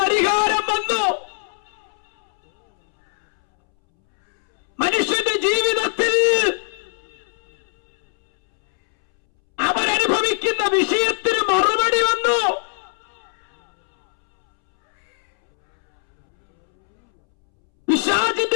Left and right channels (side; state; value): right; silent; 65 dB below the other